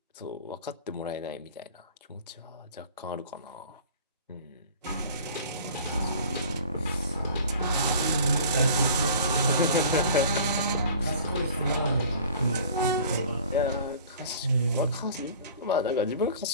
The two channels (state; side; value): inverted; both; correlation -0.45